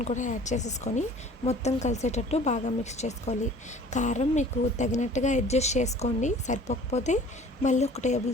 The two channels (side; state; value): both; normal; correlation 0.49